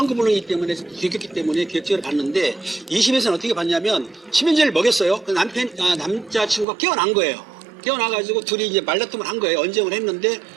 때문에 들켰기 때문에 계획적으로 봤는데 2심에서는 어떻게 봤냐면 수면제를 먹였어요. 그 남자친구가 깨어난 거예요. 깨어나가지고 둘이 이제 말다툼을 한 거예요. 언쟁을 했는데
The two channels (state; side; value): drops out; left; at 6.7 s